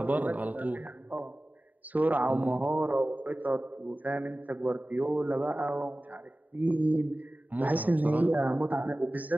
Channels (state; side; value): late; left; 0.078 ms